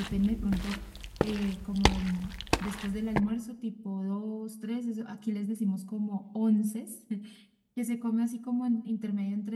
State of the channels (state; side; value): identical; both; correlation 1.00